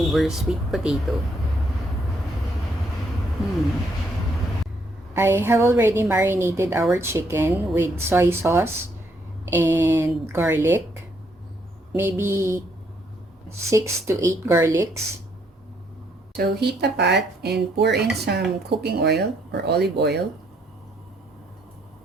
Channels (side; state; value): both; normal; correlation 0.71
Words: sweet potato? I have already marinated our chicken with soy sauce and garlic. Maybe 6 to 8 garlics. So heat a pot and pour in some cooking oil or olive oil.